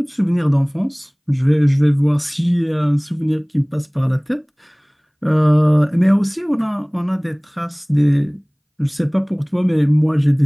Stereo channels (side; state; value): both; identical; correlation 1.00